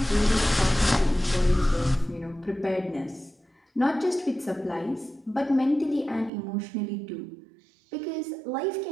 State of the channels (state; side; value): drops out; left; at 6.3 s